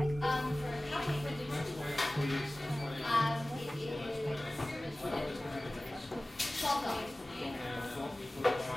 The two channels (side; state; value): both; normal; correlation 0.97